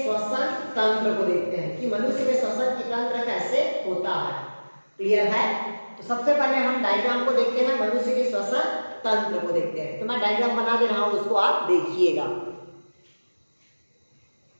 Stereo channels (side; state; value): both; inverted; correlation -1.00